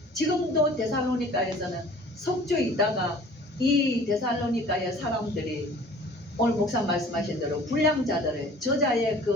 지금도 데살로니가에서는 석주에 있다가 이 데살로니가의 사람들이 오늘 목사 말씀하신 대로 불량자들을 저자의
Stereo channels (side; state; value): both; normal; correlation 0.48